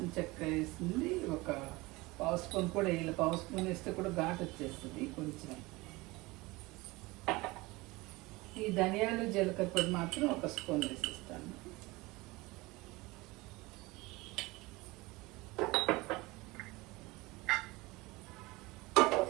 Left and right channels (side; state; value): left; quieter; 22.2 dB